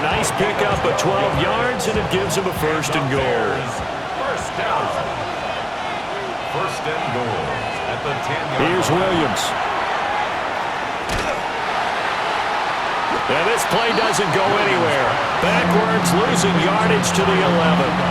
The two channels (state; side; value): identical; both; correlation 1.00